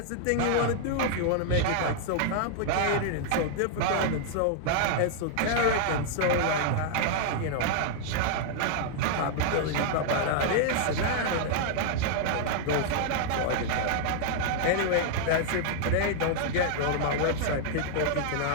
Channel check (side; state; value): both; different; correlation -0.01